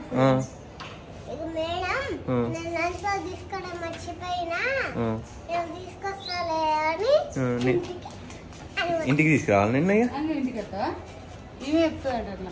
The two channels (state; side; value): identical; both; correlation 1.00